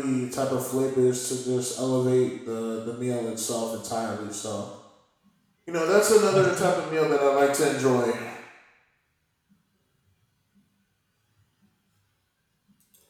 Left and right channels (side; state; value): both; identical; correlation 1.00